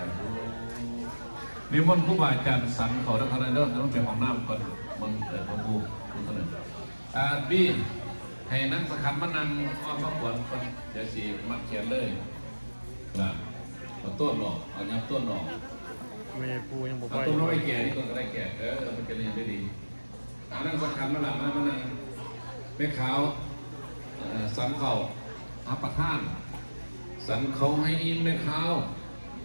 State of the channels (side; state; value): both; inverted; correlation -1.00